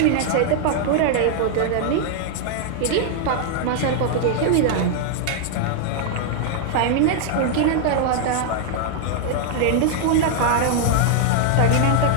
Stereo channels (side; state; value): both; different; correlation 0.00